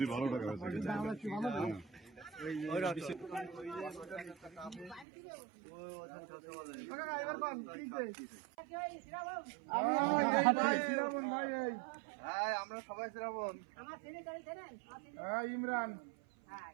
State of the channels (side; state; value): left; drops out; at 5.1 s